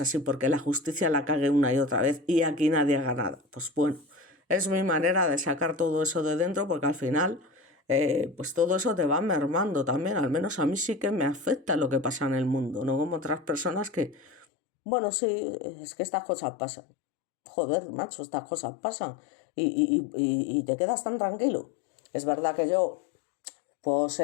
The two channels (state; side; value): drops out; right; at 14.5 s